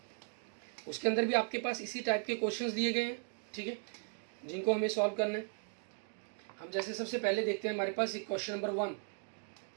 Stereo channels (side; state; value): left; silent; 53 dB below the other